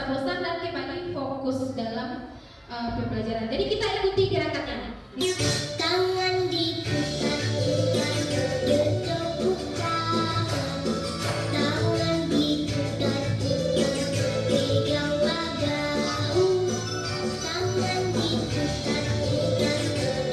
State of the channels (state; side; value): identical; both; correlation 1.00